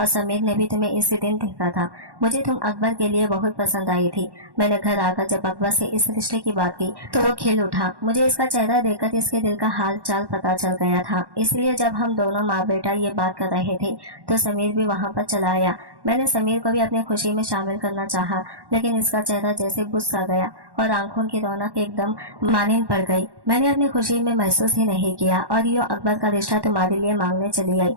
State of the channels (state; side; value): late; left; 1.1 ms